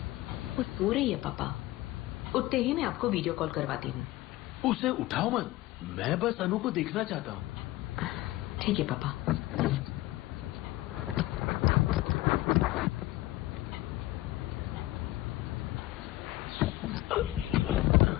वो सो रही है पापा, उठते ही मैं आपको वीडियो कॉल करवाती हूँ। उसे उठाओ मत, मैं बस अनु को देखना चाहता हूँ। ठीक है पापा।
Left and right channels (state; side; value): quieter; right; 17.5 dB